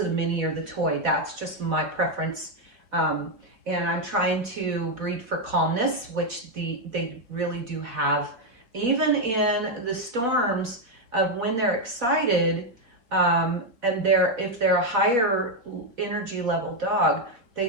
the mini or the toy. That's just my preference. And I'm trying to breed for calmness, which they really do have. Even in the storms of when they're excited, and if they're a higher energy level dog, they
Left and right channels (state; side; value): late; left; 4.3 ms